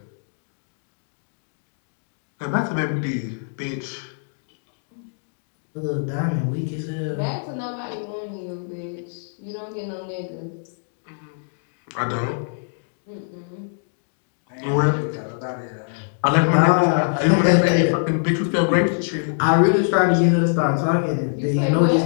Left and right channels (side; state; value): right; silent; digital silence